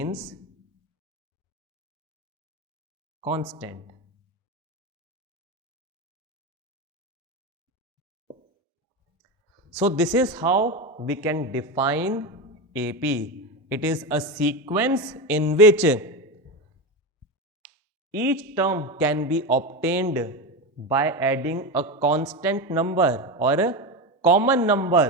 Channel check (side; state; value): both; normal; correlation 0.18